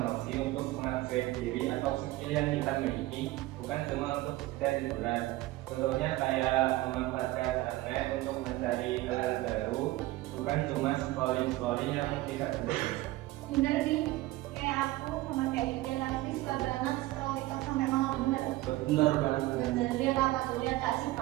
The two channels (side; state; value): left; quieter; 18.1 dB